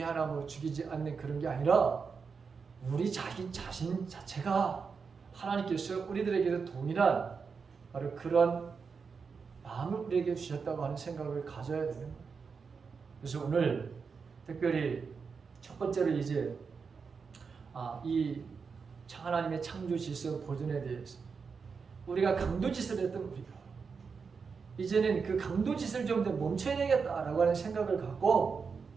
하나 죽이지 않는 그런 게 아니라 우리 자신 자체가 하나님께서 우리들에게도 동일한 바로 그런 마음을 우리에게 주셨다고 하는 생각을 가져야 되는 거예요. 그래서 오늘 특별히 첫 번째로 이제 이 하나님의 창조 질서 보존에 대해서 우리가 강도짓을 했던 우리가 이제는 그 강도짓을 좀 더 멈춰야 되겠다라고 하는 생각을 갖고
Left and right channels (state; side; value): quieter; left; 5.5 dB